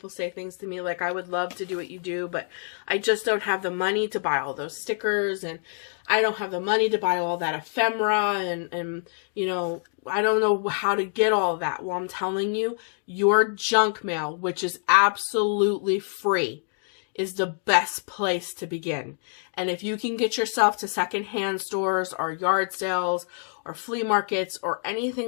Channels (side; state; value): right; silent; digital silence